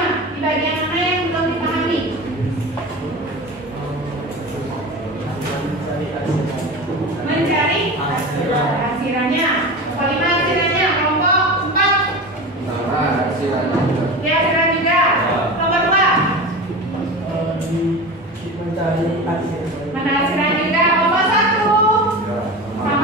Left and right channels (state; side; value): normal; both; correlation 0.29